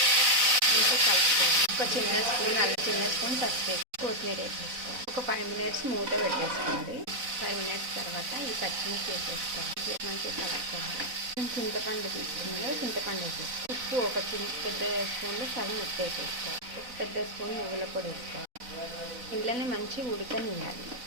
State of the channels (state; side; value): late; left; 4.0 ms